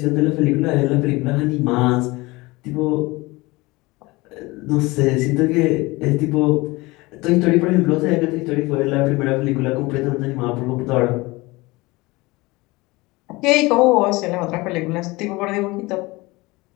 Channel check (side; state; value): right; quieter; 22.4 dB